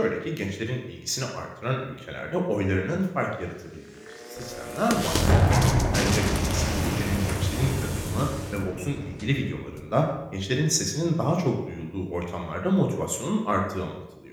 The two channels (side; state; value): both; identical; correlation 1.00